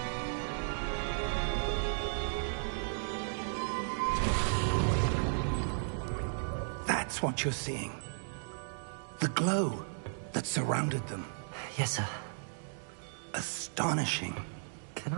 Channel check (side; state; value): left; silent; digital silence